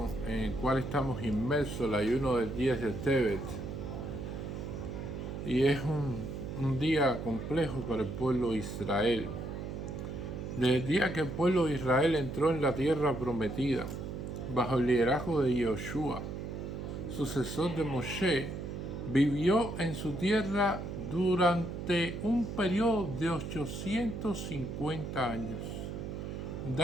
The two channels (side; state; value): right; noise; hum, 6 dB below the sound